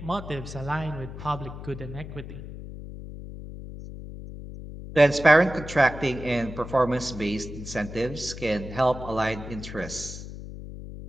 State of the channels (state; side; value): noise; left; hum, 11 dB below the sound